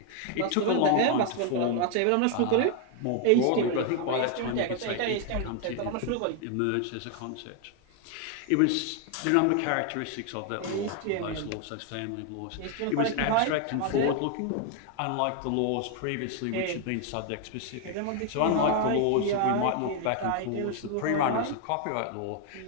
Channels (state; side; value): different; both; correlation 0.00